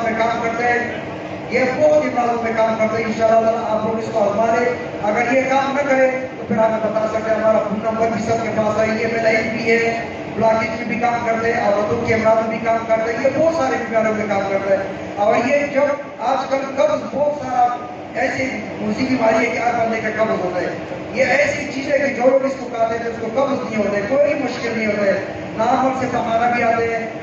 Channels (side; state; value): both; identical; correlation 1.00